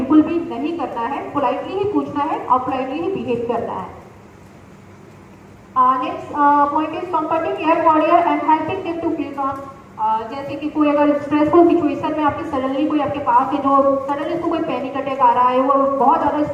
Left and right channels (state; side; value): identical; both; correlation 1.00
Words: भी नहीं करना है, पोलाइटली ही पूछना है और पोलाइटली ही बिहेव करना है। Next point is comforting air warrior and helping them to feel calm. जैसे कि कोई अगर स्ट्रेसफुल सिचुएशन में आपके सडनली कोई आपके पास है जो सडनली उसको कोई पैनिक अटैक आ रहा है, वो बहुत ज़्यादा